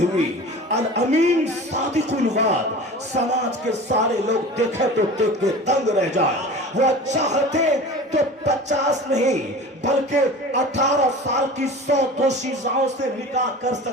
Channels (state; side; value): normal; both; correlation 0.37